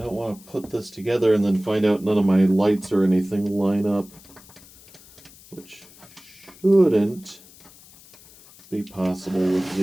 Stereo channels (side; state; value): left; noise; hiss, 23 dB below the sound